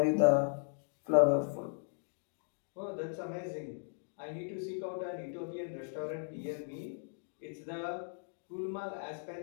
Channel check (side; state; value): right; silent; digital silence